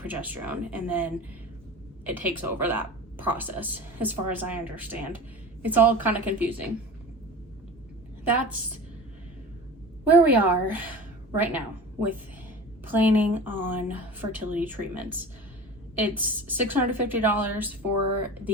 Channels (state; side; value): normal; both; correlation 0.34